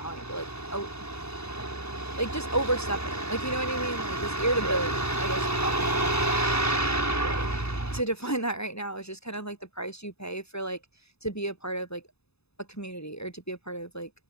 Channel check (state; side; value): late; right; 0.79 ms